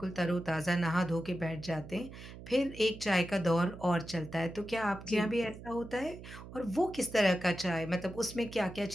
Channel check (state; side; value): noise; right; hum, 14 dB below the sound